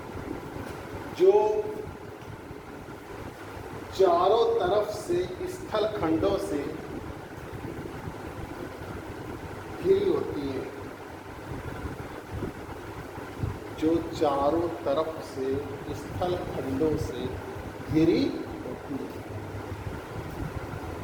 जो चारों तरफ से स्थल खंडों से घिरी होती है। जो चारों तरफ से स्थल खंडों से घिरी होती है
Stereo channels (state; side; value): identical; both; correlation 1.00